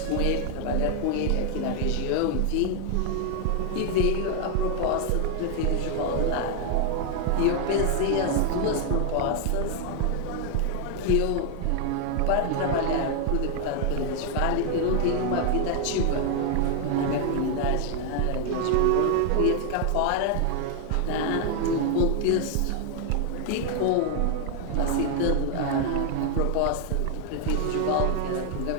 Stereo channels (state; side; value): different; both; correlation 0.00